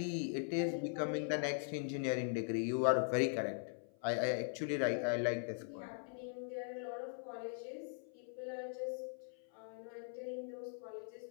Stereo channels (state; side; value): silent; right; 51 dB below the other